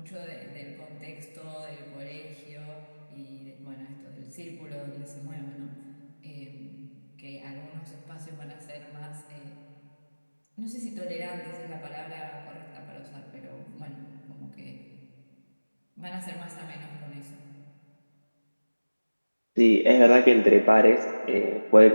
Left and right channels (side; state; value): both; inverted; correlation -1.00